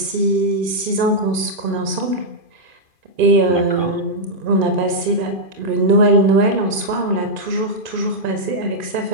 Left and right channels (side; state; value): left; late; 2.5 ms